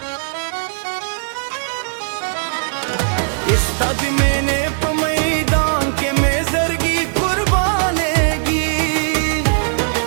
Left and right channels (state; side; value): silent; left; digital silence